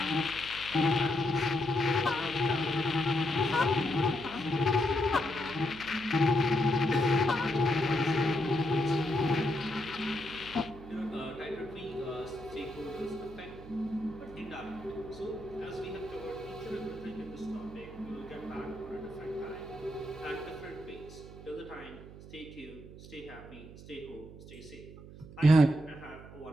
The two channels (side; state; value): right; noise; hum, 16 dB below the sound